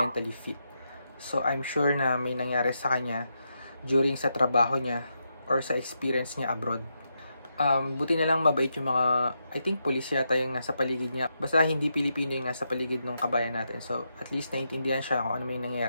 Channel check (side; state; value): both; inverted; correlation -0.83